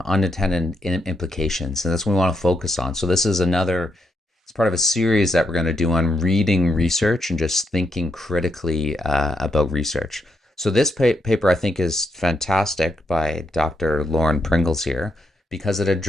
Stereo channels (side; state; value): both; normal; correlation 0.79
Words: unintended implications, and that's what we want to focus on. So, this is it's part of a series that we're going to do on reading research and just thinking critically about research. So this paper I think is fantastic by Dr. Lauren Pringles here because it